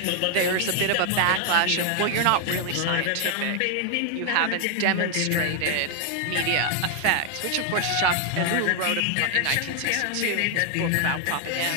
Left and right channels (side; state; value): both; different; correlation 0.00